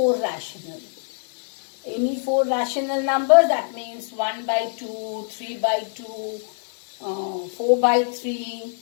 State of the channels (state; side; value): silent; right; digital silence